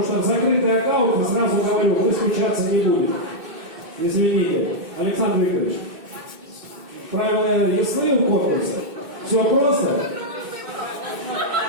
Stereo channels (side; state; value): left; late; 2.6 ms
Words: что в закрытый аккаунт, сразу говорю, вы скучаться не будете. Извините. Александр Викторович, правила ясны у конкурса? Все просто?